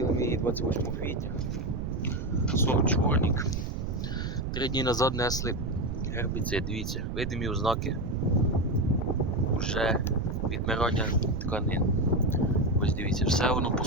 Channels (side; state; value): right; noise; rumble, 3 dB below the sound